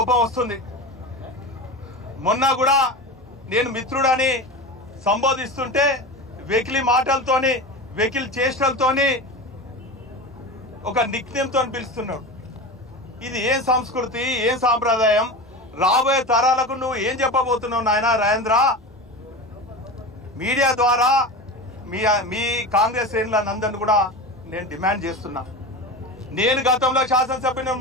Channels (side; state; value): both; normal; correlation 0.27